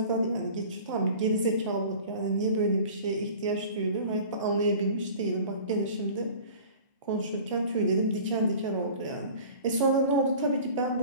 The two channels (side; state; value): both; inverted; correlation -0.43